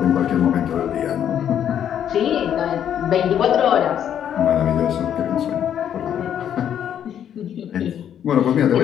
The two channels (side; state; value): right; quieter; 9.6 dB